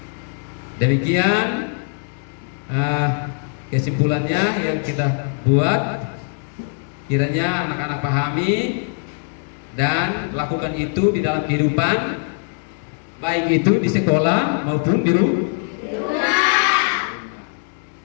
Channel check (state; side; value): silent; right; 56 dB below the other